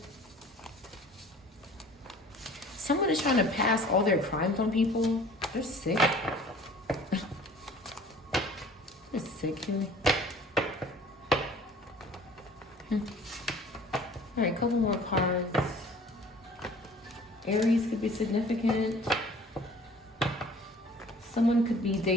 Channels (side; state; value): both; normal; correlation 0.48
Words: Someone is trying to pass all their crimes on people. They're sick. They're sick here. All right, couple more cards. Aries could be significant. Someone could be